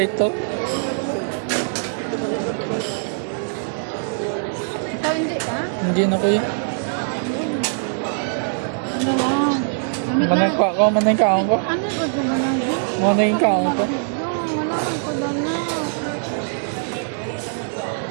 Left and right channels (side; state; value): left; silent; digital silence